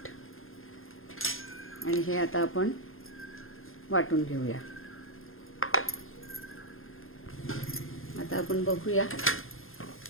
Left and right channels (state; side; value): late; right; 0.60 ms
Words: आणि हे आता आपण वाटून घेऊया. आता आपण बघूया